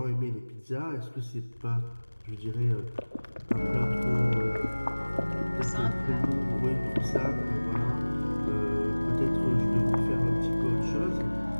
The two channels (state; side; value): inverted; both; correlation -1.00